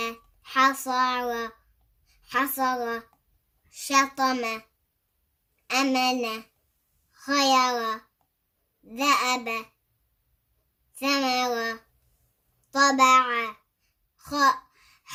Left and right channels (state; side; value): identical; both; correlation 1.00